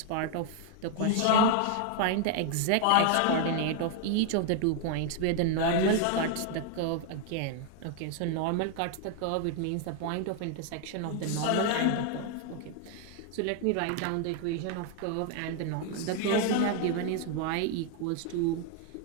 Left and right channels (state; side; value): different; both; correlation 0.00